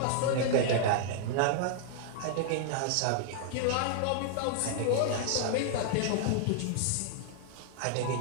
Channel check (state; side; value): different; both; correlation -0.01